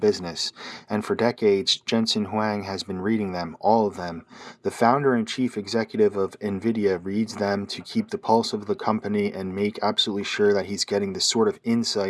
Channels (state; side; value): identical; both; correlation 1.00